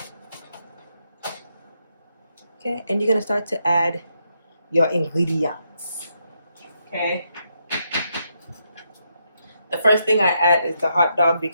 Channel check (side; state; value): both; inverted; correlation -0.79